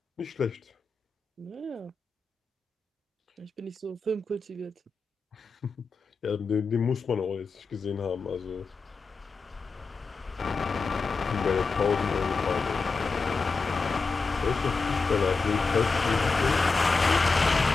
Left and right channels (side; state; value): right; quieter; 4.3 dB